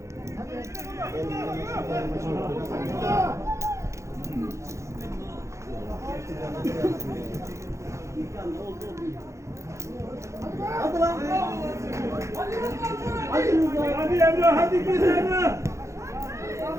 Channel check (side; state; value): left; late; 0.14 ms